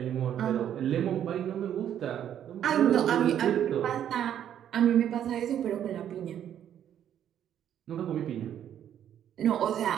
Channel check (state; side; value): quieter; left; 10.1 dB